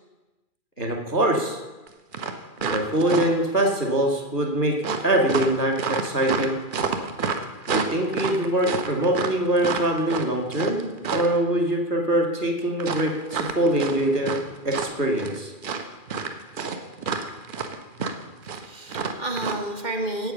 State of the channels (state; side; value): late; right; 2.4 ms